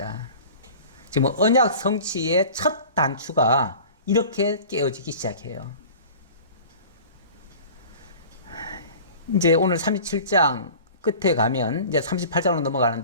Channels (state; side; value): inverted; both; correlation -0.41